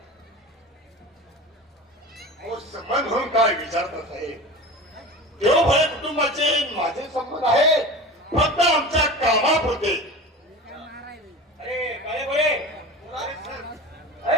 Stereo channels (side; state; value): both; normal; correlation 0.33